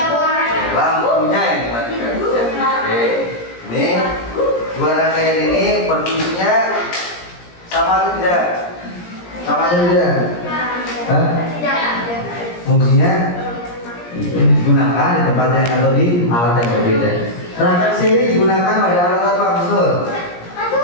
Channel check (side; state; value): right; late; 17 ms